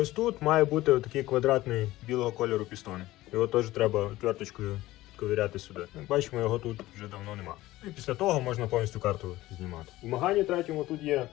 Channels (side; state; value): right; quieter; 17.0 dB